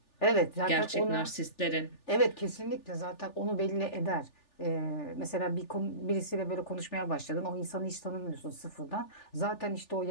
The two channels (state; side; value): late; right; 3.4 ms